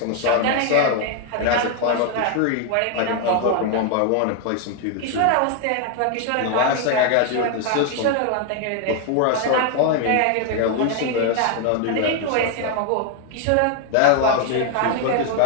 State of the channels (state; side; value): different; both; correlation 0.00